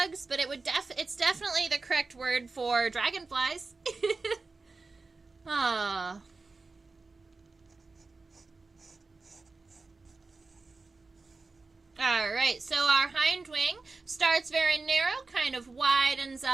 but it's definitely the correct word for dragonflies. Ah. All right, so our hind wing starts very narrow, kind of widens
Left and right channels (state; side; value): quieter; left; 3.8 dB